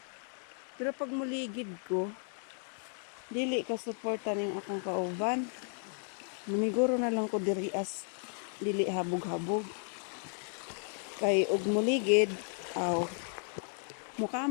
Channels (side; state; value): right; silent; 55 dB below the other